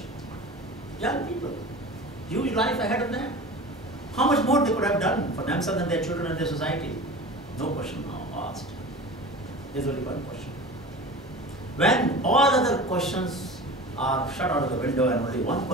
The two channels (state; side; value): normal; both; correlation 0.35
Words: Young people, huge life ahead of them. How much more they could have done for themselves and their children and their society? No question now asked. There's only one question. When all other questions are shut out of the window and only one